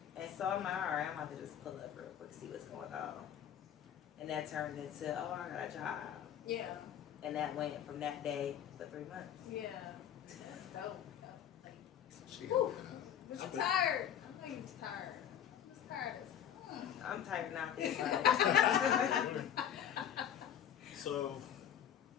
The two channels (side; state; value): right; quieter; 9.5 dB